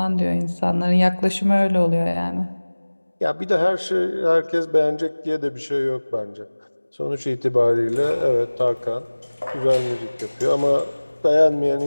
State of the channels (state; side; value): inverted; both; correlation -1.00